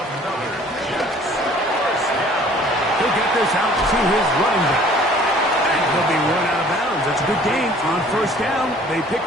Jets. First down. He'll get this out to his running back. And he'll be run out of bounds. That's a good gain on 1st down. They pick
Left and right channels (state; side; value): normal; both; correlation 0.53